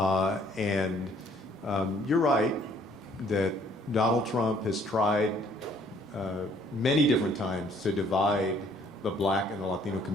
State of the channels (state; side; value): normal; both; correlation 0.61